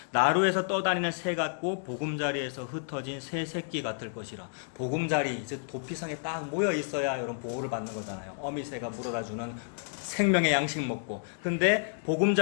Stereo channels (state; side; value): silent; right; digital silence